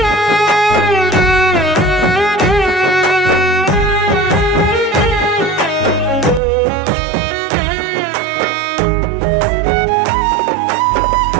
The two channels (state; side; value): drops out; left; at 6.4 s